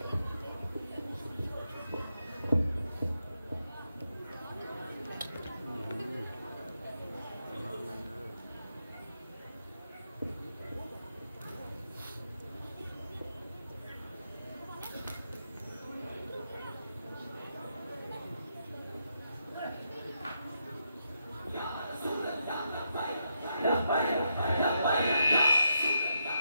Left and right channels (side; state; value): both; inverted; correlation -0.82